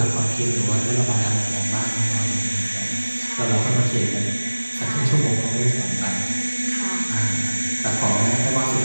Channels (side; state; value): both; inverted; correlation -1.00